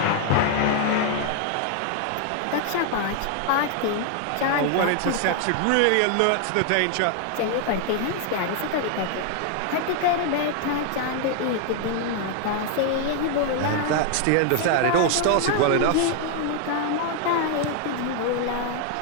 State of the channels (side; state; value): both; different; correlation 0.00